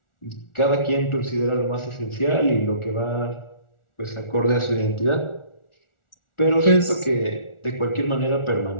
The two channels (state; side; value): late; right; 1.4 ms